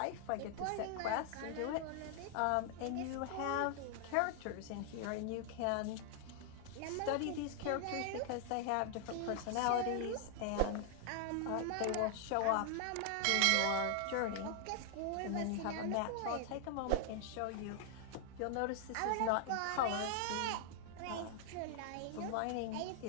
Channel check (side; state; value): both; different; correlation 0.00